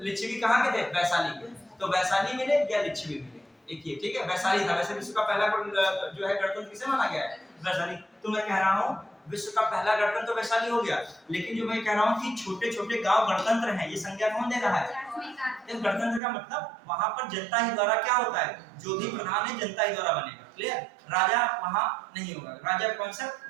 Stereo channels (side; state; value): left; drops out; at 16.2 s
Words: कहाँ के थे? वैशाली के। तो वैशाली मिले या लिच्छवी मिले, एक ये, ठीक है। वैशाली था। वैसे विश्व का पहला जो है गणतंत्र किसे माना गया है? वैशाली। तो मैं कह रहा हूँ विश्व का पहला गणतंत्र तो वैशाली हो गया, लेकिन जो मैं कह रहा हूँ कि छोटे छोटे गांव गणतंत्र हैं, ये संज्ञा कौन दे रहा है? गणतंत्र का मतलब वहां पर जनता ही द्वारा क्या होता है? जो भी प्रधान है जनता ही द्वारा बनेगा, क्लियर? राजा वहां नहीं होगा, राजा